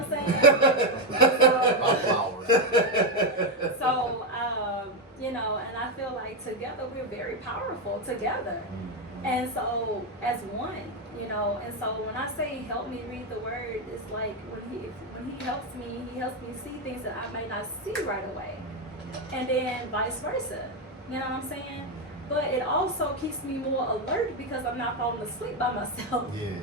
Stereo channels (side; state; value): both; normal; correlation 0.06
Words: Thank saying? My flowers. So, and I feel like together we're very powerful together. Mhm. And so, as one, and so when I say help me read the word, it's like when he helps me see things that I may not see right away, and then vice versa. You know what I'm saying? But it also keeps me more alert because I'm not falling asleep by myself.